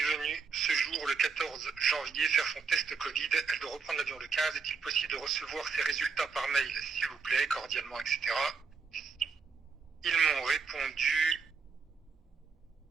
venue ce jour, le 14 janvier, faire son test Covid. Elle doit reprendre l'avion le 15. Est-il possible de recevoir ses résultats par mail, s'il vous plaît, cordialement, etc. Ils m'ont répondu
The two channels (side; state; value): left; quieter; 5.2 dB